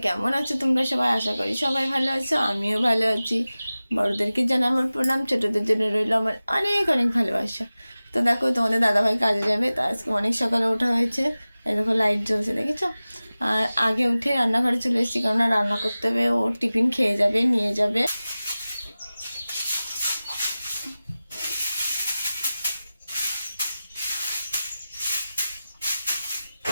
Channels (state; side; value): inverted; both; correlation -0.97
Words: কেমন আছো তোমরা সবাই? আশা করি সবাই ভালো আছো, আমিও ভালো আছি। বড়দেরকে জানাই আমার প্রণাম, ছোটদের জন্য রইল আমার অনেক অনেক ভালোবাসা। তো দেখো, তোমাদের দাদাভাই কাজে যাবে, তো আজকে অনেক সকালে ওঠা হয়েছে। এই দেখো লাইট জ্বলছে, দেখেছো? আর আগে উঠে রান্নাঘরে চলে এসেছি, কেননা রান্না করতে হবে, ও টিফিন খেয়ে যাবে, নিয়ে যাবে।